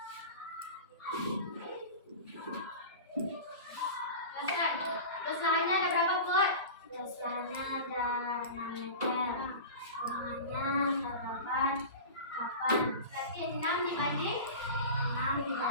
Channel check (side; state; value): both; inverted; correlation -0.32